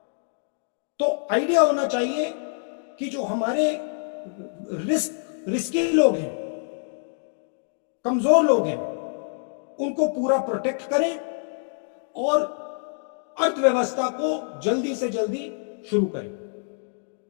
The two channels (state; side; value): silent; right; digital silence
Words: तो आइडिया होना चाहिए कि जो हमारे रिस्की लोग हैं, कमजोर लोग हैं, उनको पूरा प्रोटेक्ट करें और अर्थव्यवस्था को जल्दी से जल्दी शुरू करें।